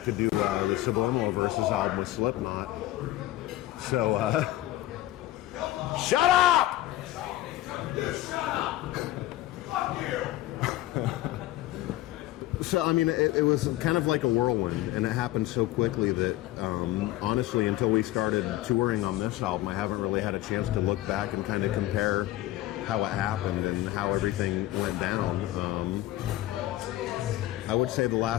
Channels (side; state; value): right; quieter; 15.7 dB